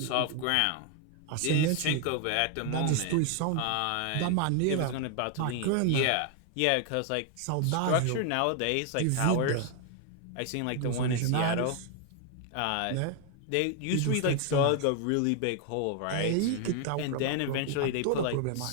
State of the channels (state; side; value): different; both; correlation 0.00